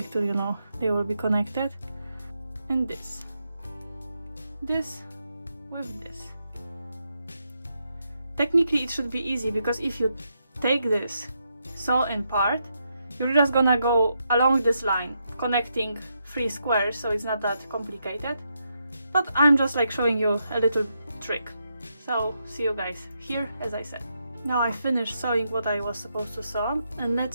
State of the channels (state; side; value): inverted; both; correlation -0.81